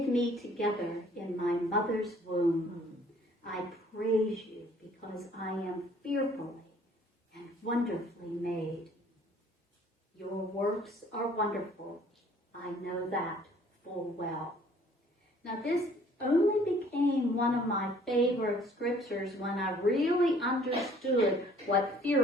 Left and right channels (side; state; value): both; normal; correlation 0.57